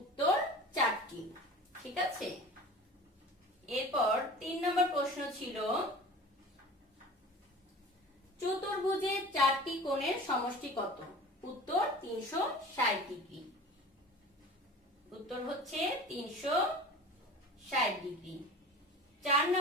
4টি। ঠিক আছে। এরপর 3 নম্বর প্রশ্ন ছিল চতুর্ভুজের 4টি কোণের সমষ্টি কত? উত্তর 360 ডিগ্রি। উত্তর হচ্ছে 360 ডিগ্রি। 4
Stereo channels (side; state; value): both; normal; correlation 0.39